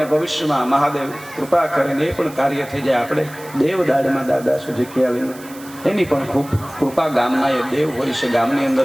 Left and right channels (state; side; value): noise; right; hiss, 19 dB below the sound